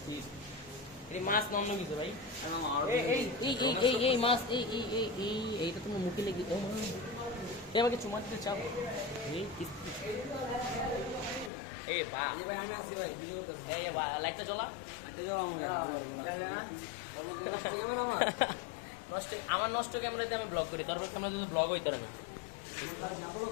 এই মাছ নন্ন কিছু ভাই, এই এই এই এই এই মাছ এই এই এই এই এইটা তুমি মুখে লেগে ও মা, এই আমাকে চুমা দিতে চাও? এই কিস্তি এই বা এই ভাই আমি আসি ভাই, এই বা লাইটটা জ্বলা, লাইটটা জ্বলা আমাকে নষ্ট। আমার নষ্ট ক্যামেরাতে আমি ব্লগ করি, তোর ক্যামেরাতে তো ব্লগ হইতে পারবে।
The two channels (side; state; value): right; drops out; at 11.5 s